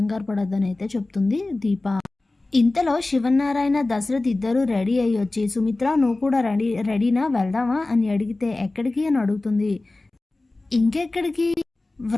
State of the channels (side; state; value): right; quieter; 3.0 dB